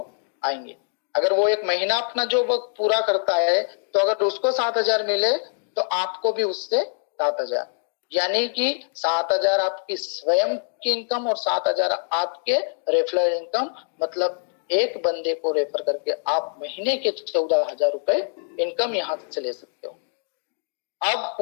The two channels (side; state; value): right; silent; digital silence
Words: आएंगे। अगर वो एक महीना अपना जॉब वर्क पूरा करता है तो अगर उसको 7,000 मिले तो आपको भी उससे 7,000, यानी कि 7,000 आपकी स्वयं की इनकम और 7,000 आपके रेफरल इनकम। मतलब एक बंदे को रेफर करके आप महीने के 14,000 रुपए इनकम यहाँ से ले सकते हो। अब